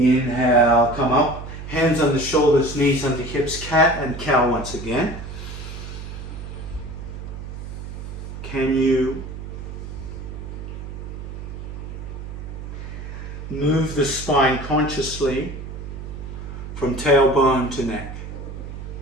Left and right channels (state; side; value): noise; right; hum, 9 dB below the sound